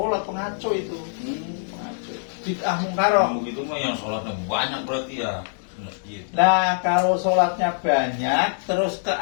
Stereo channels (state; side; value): silent; right; digital silence